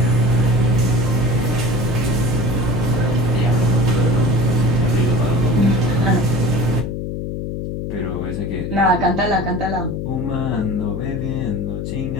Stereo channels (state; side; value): noise; left; hum, 4 dB below the sound